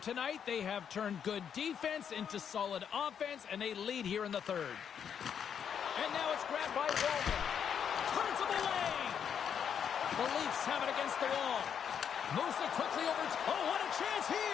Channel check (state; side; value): quieter; right; 8.0 dB